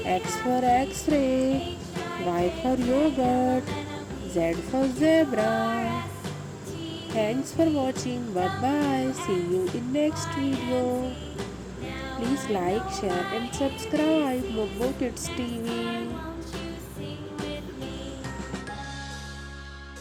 X for x-ray. Y for yogurt. Z for zebra. Thanks for watching. Bye bye. See you in next video. Please like, share and subscribe Mobo Kids TV.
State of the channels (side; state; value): both; identical; correlation 1.00